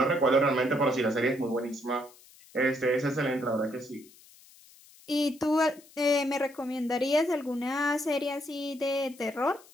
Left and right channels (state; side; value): noise; left; hiss, 24 dB below the sound